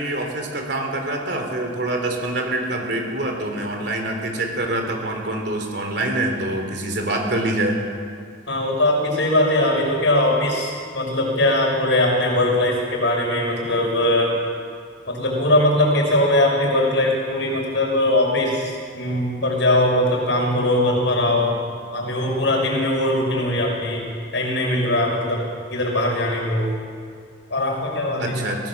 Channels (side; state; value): both; normal; correlation 0.01